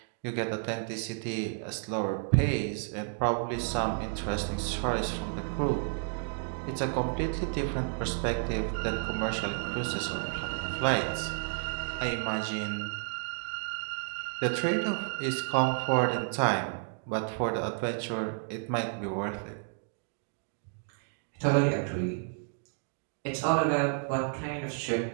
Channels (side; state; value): left; silent; 57 dB below the other